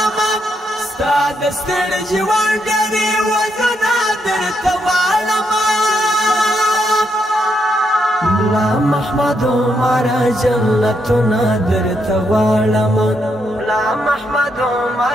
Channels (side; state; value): both; normal; correlation 0.78